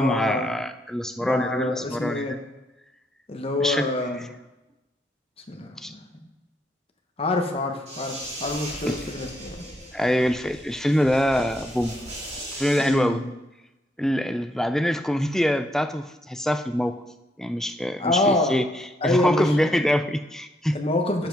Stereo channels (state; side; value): normal; both; correlation 0.75